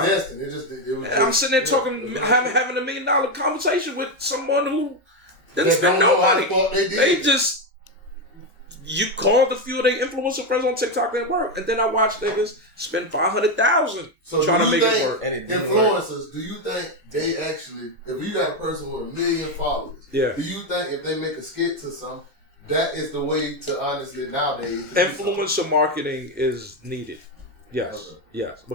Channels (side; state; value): both; normal; correlation 0.08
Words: sitting there talking, having $1 million conversation with someone who didn't spend no money. You called a few of their influencer friends on TikTok and it worked. And then I watched niggas spend $500,000 trying to make it work. And influencers, do you think they actually, if you got a person with 1 million followers, do you think if they make a skit to some, that is the way to honestly nowadays? Influencer marketing is needed. Yes, yes,